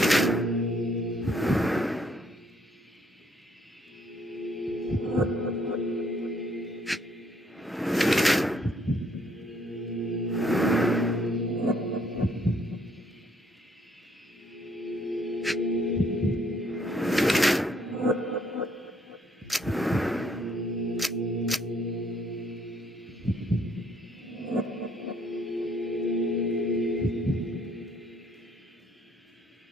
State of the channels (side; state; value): both; normal; correlation 0.67